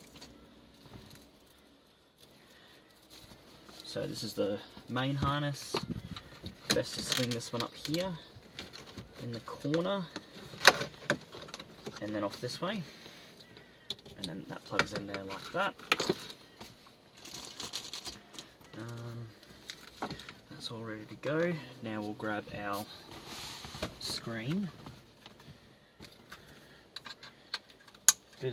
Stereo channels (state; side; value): identical; both; correlation 1.00